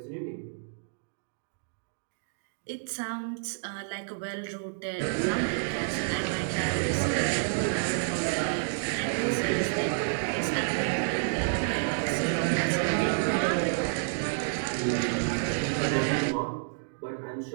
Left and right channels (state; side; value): silent; left; digital silence